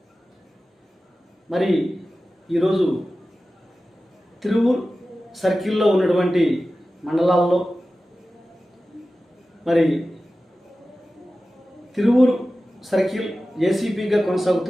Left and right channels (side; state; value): both; normal; correlation 0.95